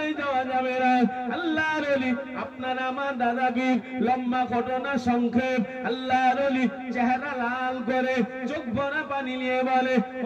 যাওয়া যাবে না। আল্লাহর ওলি আপনার আমার দাদা পীর, লম্বা ঘটনা সংক্ষেপ, আল্লাহর ওলি চেহারা লাল করে চোখ ভরা পানি নিয়ে বলে,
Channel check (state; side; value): identical; both; correlation 1.00